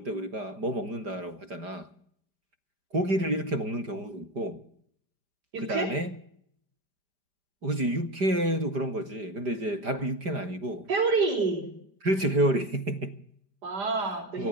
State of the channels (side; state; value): left; late; 5.0 ms